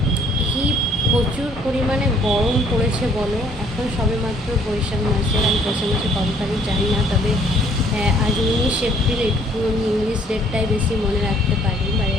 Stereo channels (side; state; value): both; normal; correlation 0.61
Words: কি প্রচুর পরিমাণে গরম পড়েছে বলো। এখন সবেমাত্র বৈশাখ মাসের, আমি বৈশাখ মাসে কত তারিখ জানি না, তবে আজ 19 এপ্রিল। একটু আমি ইংলিশ ডেটটাই বেশি মনে রাখতে পারি,